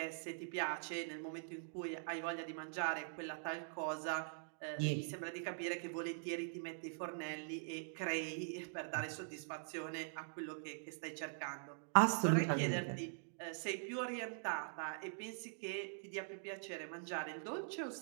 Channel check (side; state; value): left; silent; digital silence